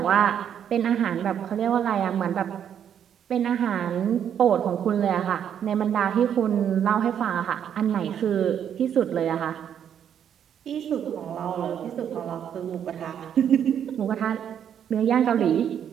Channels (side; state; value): left; quieter; 9.0 dB